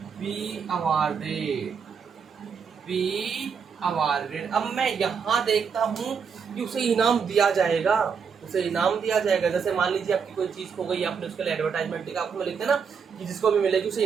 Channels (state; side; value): quieter; left; 6.3 dB